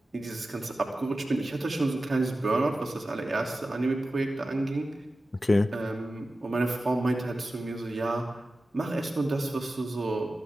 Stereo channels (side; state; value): both; normal; correlation 0.94